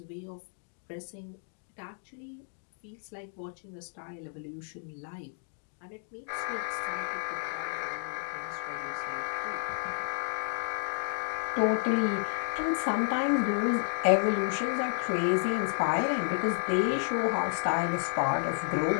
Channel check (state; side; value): silent; right; 57 dB below the other